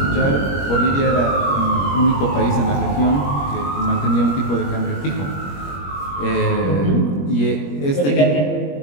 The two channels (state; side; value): late; right; 21 ms